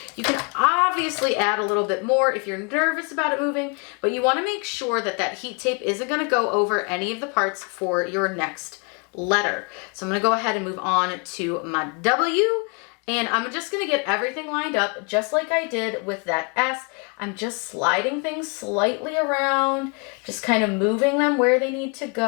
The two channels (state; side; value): quieter; right; 34.5 dB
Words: You can obviously add a little bit more if you're nervous about it moving, but you wanna make sure that that heat tape isn't gonna go over any of the parts for your next letter. So I'm gonna go ahead and move on to my W, and I'm just gonna get everything lined up just like I did with that S. I'm just sliding things slightly around, just kind of moving them where they need to